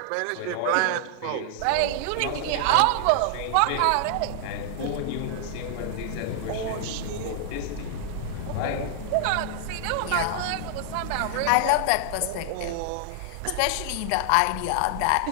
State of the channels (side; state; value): both; different; correlation 0.00